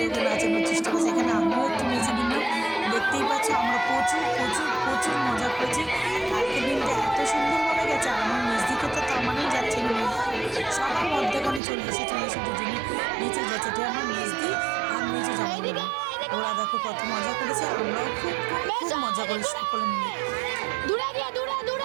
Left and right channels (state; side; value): drops out; left; at 11.6 s